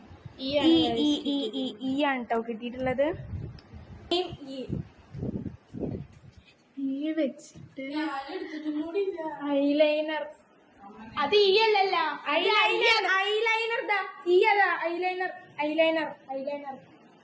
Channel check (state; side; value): identical; both; correlation 1.00